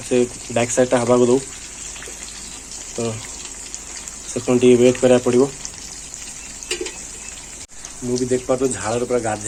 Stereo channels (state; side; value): identical; both; correlation 1.00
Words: से बैक साइडटा हवा को दो तो से वेट करा पड़ो मुझे देख पा तो झाड़ पूरा